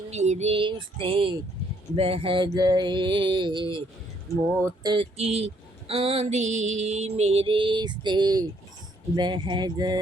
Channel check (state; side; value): normal; both; correlation 0.68